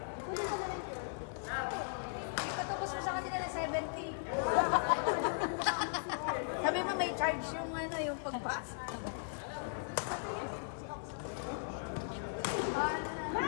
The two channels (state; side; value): silent; right; 53 dB below the other